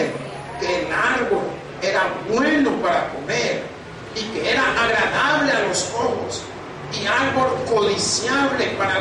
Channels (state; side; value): identical; both; correlation 1.00